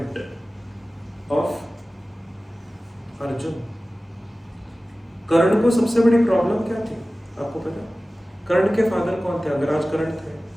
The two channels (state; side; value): normal; both; correlation 0.97